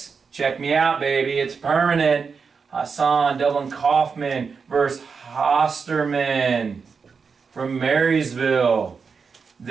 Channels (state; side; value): quieter; left; 5.5 dB